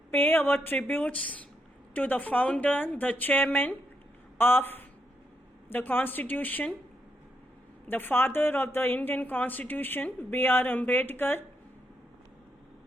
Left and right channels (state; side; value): normal; both; correlation 0.80